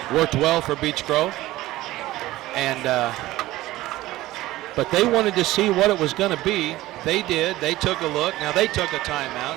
worked well for Beech Grove. And but they wanted to see what it was going to be. They did. They took a look. Now they took a timeout.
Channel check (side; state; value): left; quieter; 17.0 dB